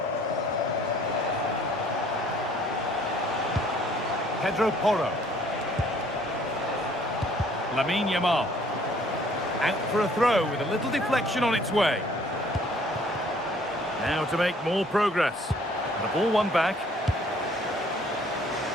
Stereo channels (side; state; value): both; normal; correlation 0.59